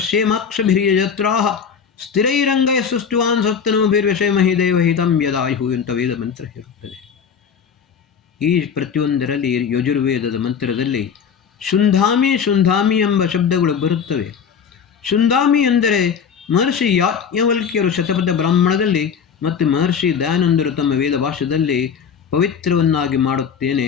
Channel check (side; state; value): right; quieter; 7.0 dB